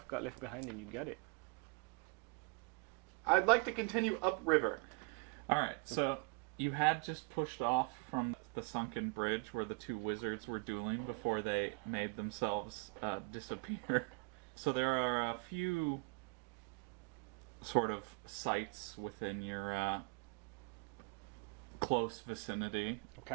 got left behind and you got it. I'd like to continue upriver. Alright, so you had just pushed off from the sunken bridge where the two wizards were dueling before they made themselves disappear. So there are a few sort of sites within your close vicinity.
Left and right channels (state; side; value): quieter; left; 32.6 dB